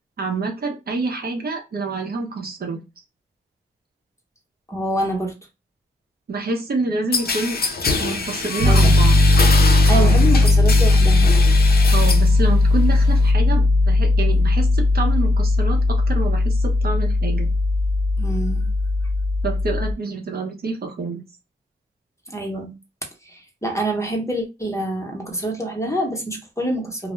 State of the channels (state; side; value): normal; both; correlation 0.79